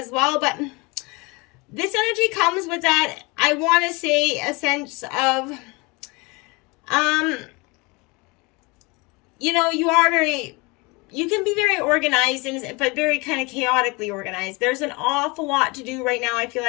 well. But this energy comes with that, I want to say, a sense of You know, you can be very organized, but very kind of chaotically organized. There's an awful lot to do right now. I feel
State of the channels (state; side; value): quieter; right; 26.6 dB